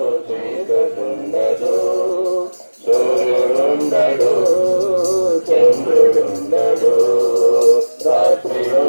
చీకటుండదు, సూర్యుడుండడు, చంద్రుడుండడు. రాత్రి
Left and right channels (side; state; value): both; inverted; correlation -1.00